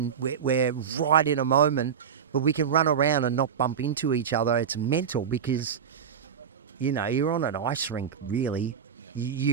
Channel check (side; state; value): left; quieter; 7.6 dB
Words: we're right in a moment, but we can run around and not bump into each other, it's mental because, you know, you're on an ice rink, really.